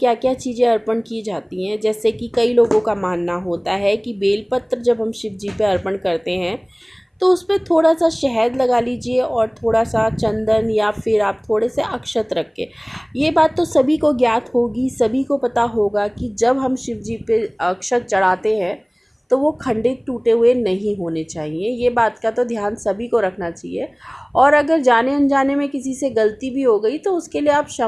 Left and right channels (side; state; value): both; identical; correlation 1.00